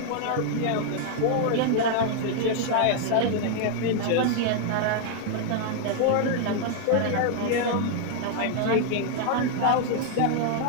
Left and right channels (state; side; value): different; both; correlation 0.00